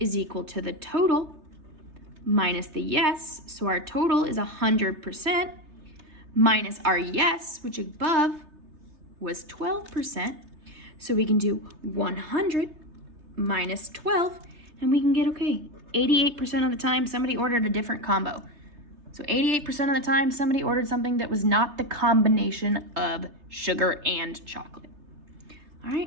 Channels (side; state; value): left; late; 3.3 ms